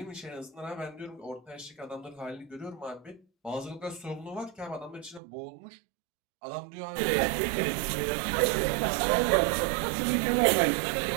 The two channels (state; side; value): drops out; left; at 5.2 s